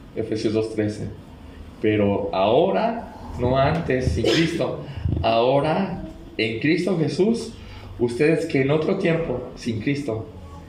Efesios 2:13, pero ahora, no antes, sin Cristo, ahora en Cristo Jesús, ustedes que en otro tiempo, sin Cristo,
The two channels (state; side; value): identical; both; correlation 1.00